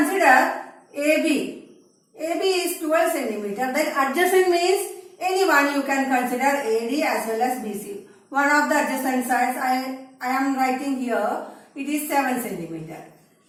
AB. AB is 12 centimeter. Then adjacent means anyone you can consider AD as well as BC. One of the adjacent sides I am writing here. It is 7 centimeter.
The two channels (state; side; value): identical; both; correlation 1.00